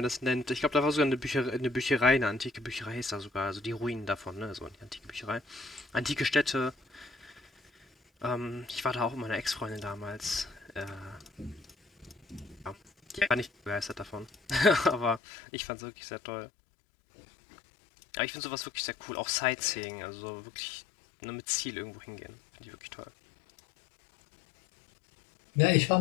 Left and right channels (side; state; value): right; drops out; at 15.2 s